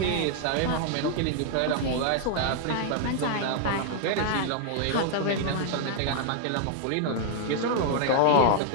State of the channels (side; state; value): both; different; correlation -0.01